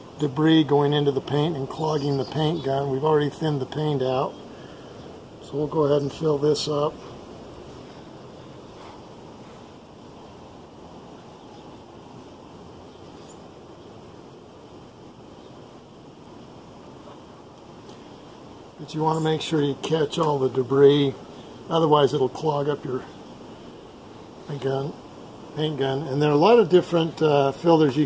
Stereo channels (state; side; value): identical; both; correlation 1.00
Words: debris going into the paint and clogging the paint gun. We've already thinned the paint out. So we'll go ahead and fill this up. But you want to make sure you catch all the debris, otherwise it'll clog up your paint gun. And there are a lot of different filters you